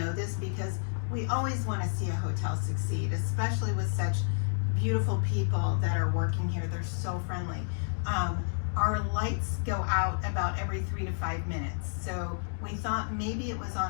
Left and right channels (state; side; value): silent; right; digital silence